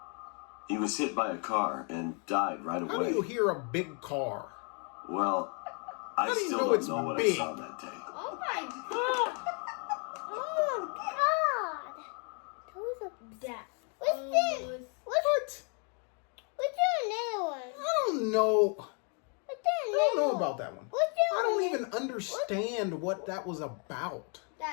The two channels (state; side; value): quieter; right; 38.5 dB